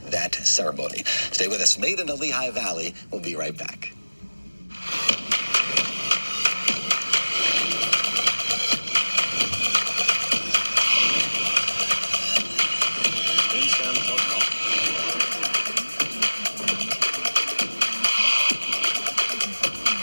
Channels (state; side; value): inverted; both; correlation -1.00